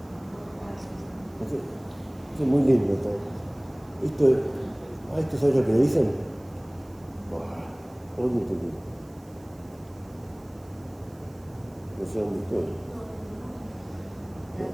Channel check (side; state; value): right; noise; hiss, 28 dB below the sound